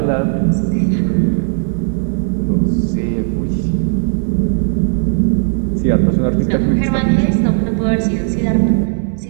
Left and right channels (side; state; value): left; silent; 67 dB below the other